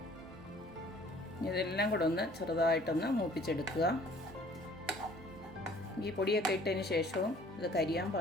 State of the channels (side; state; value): both; normal; correlation 0.54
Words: ഇതെല്ലാം കൂടെ ഒന്ന് ചെറുതായിട്ടൊന്ന് മൂപ്പിച്ചെടുക്കുക. ഈ പൊടിയൊക്കെ ഇട്ടതിന് ശേഷവും ഇത് കരിയാൻ